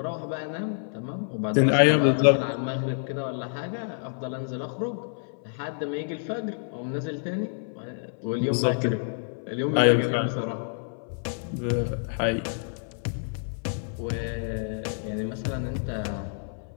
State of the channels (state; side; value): silent; right; 59 dB below the other